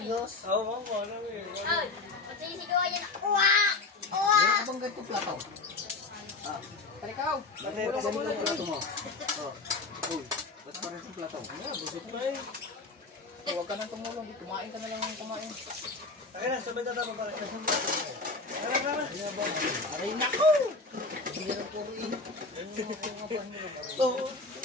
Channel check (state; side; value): quieter; right; 3.6 dB